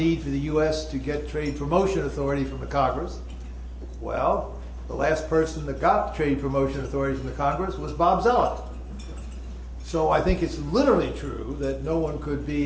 for the U.S. to get trade promotion authority from the Congress. Well, the last person that got trade promotion authority from the Congress was Bob Zoellick. So I think it's literally true that no one could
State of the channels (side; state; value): both; identical; correlation 1.00